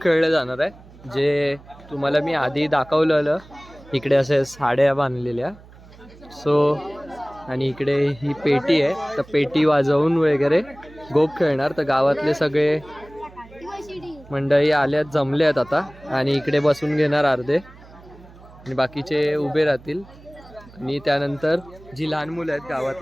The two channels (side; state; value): right; noise; hum, 22 dB below the sound